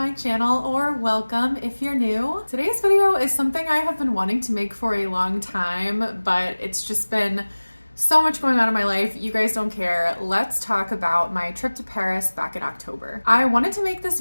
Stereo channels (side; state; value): both; inverted; correlation -1.00